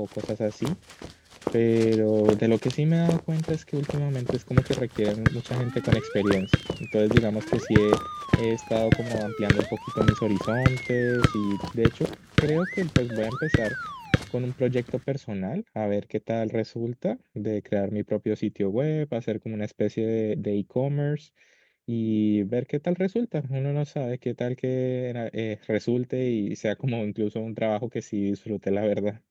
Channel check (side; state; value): both; identical; correlation 1.00